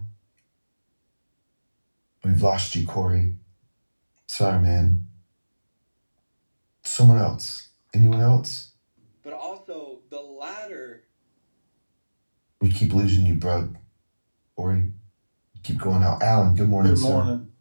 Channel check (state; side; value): inverted; both; correlation -1.00